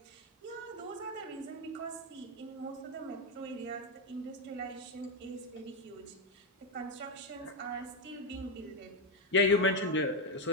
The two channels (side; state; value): both; normal; correlation 0.06